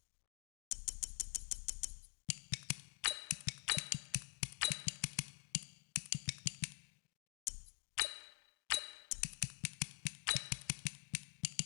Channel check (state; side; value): silent; right; digital silence